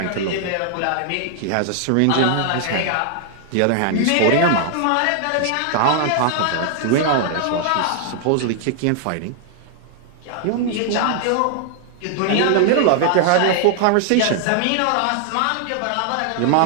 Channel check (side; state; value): both; different; correlation 0.00